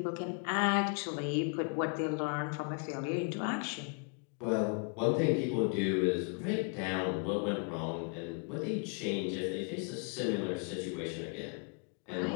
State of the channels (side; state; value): right; quieter; 38.9 dB